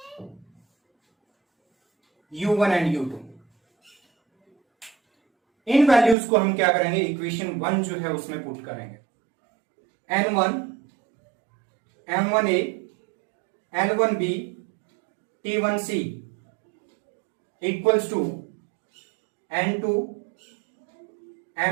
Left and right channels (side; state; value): left; drops out; at 6.2 s